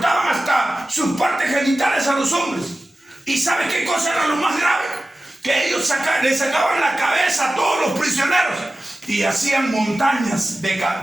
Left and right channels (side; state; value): both; normal; correlation 0.95